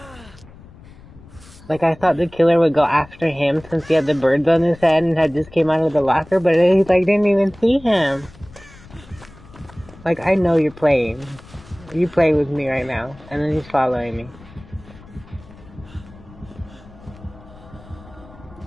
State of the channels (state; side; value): noise; left; rumble, 21 dB below the sound